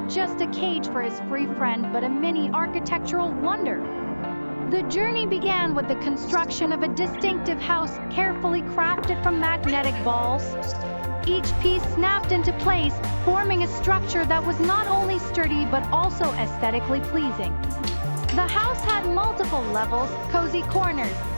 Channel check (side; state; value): both; inverted; correlation -1.00